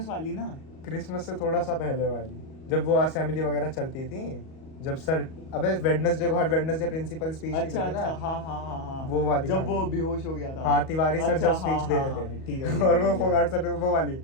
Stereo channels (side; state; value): right; late; 38 ms